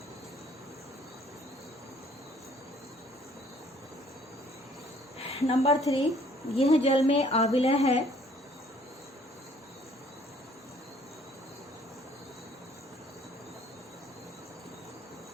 नंबर 3, यह जल में आविलय है।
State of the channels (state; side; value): normal; both; correlation 0.59